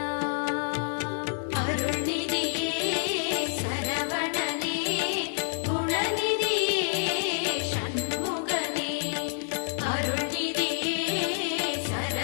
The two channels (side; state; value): right; silent; digital silence